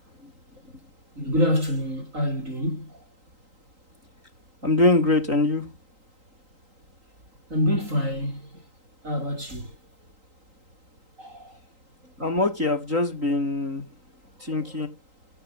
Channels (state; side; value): late; left; 3.8 ms